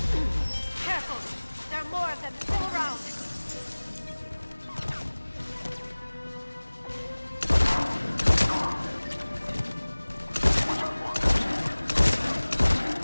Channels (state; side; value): inverted; both; correlation -1.00